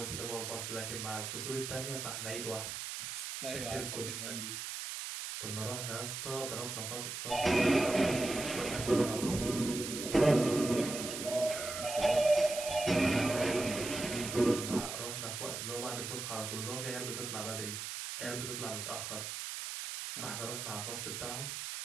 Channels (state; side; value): noise; right; hiss, 5 dB below the sound